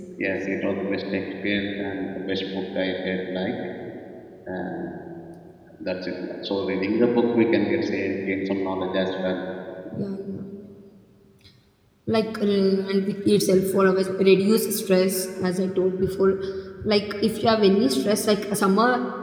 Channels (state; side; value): identical; both; correlation 1.00